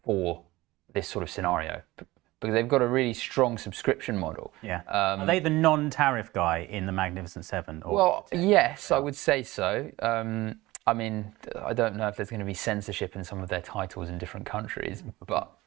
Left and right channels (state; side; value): quieter; left; 19.1 dB